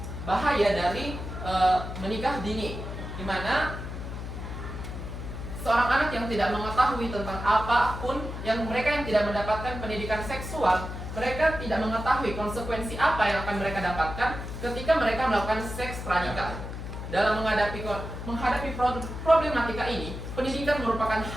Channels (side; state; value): left; noise; hum, 7 dB below the sound